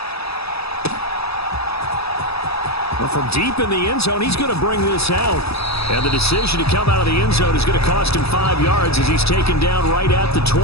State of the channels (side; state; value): right; late; 0.78 ms